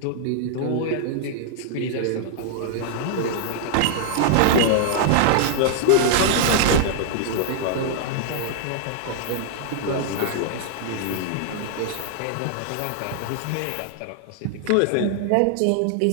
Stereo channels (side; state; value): both; different; correlation -0.01